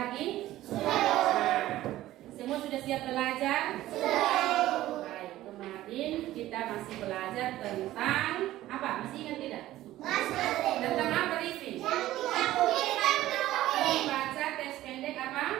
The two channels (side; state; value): left; quieter; 15.0 dB